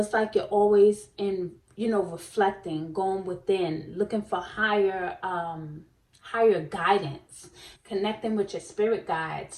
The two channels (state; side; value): identical; both; correlation 1.00